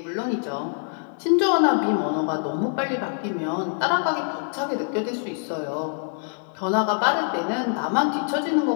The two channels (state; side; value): silent; right; 61 dB below the other